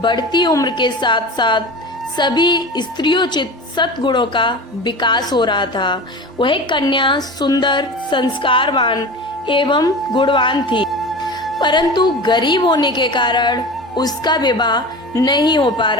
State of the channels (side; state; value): both; normal; correlation 0.32